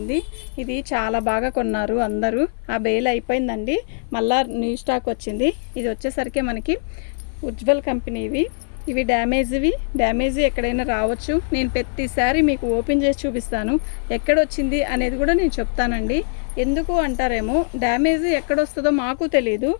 ఇది చాలా బాగా కొన్నారు అందరూ. ఆ బేల్ అయిపోయిందండి, మళ్ళా న్యూ స్టాక్ వచ్చింది. ఇది వచ్చేసరికి మనకి ఉజ్వల్ కంపెనీవి. ఇవి డ్యామేజ్ ఎక్కడైనా రావచ్చు. నేను ప్రతిసారి మీకు ఓపెన్ చేసి చూపిస్తాను, ఎక్కడొచ్చింది అనేది కూడా నేను చెప్తానండి. ఎందుకు అంటారేమో, డ్యామేజ్ ఎక్కడొస్తుందో మాకు తెలియదు.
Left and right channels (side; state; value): right; silent; 57 dB below the other